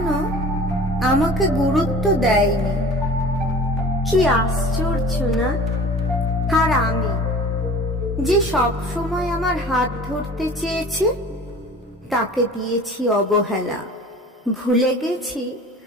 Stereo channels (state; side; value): normal; both; correlation 0.43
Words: আমাকে গুরুত্ব দেয়নি। কি আশ্চর্য না? আর আমি যে সব সময় আমার হাত ধরতে চেয়েছে তাকে দিয়েছি অবহেলা। ভুলে গেছি